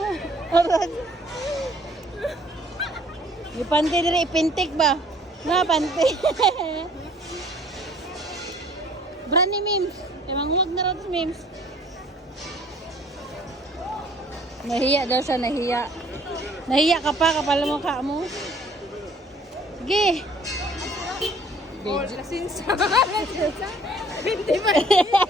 Arad. Ipante diri ipintik ba? Na pante. Brand ni Mims. Emang huwag na rin Mims. Nahiya daw siya, nahiya. Nahiya ka pa, kapal mo ka mo. Sige. Oh, lasinsa. Lasinsa. Hindi ba?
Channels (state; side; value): normal; both; correlation 0.56